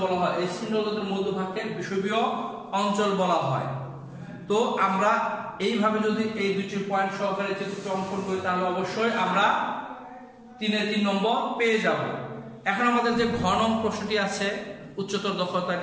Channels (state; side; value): identical; both; correlation 1.00